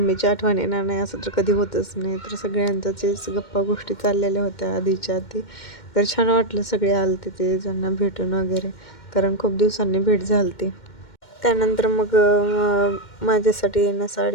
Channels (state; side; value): late; right; 2.1 ms